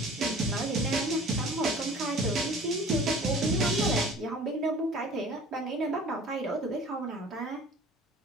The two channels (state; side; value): normal; both; correlation 0.46